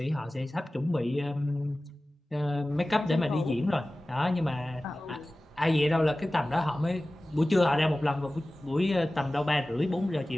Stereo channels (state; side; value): normal; both; correlation 0.97